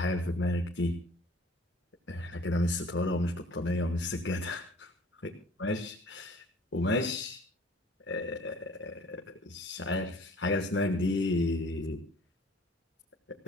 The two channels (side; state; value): both; normal; correlation 0.52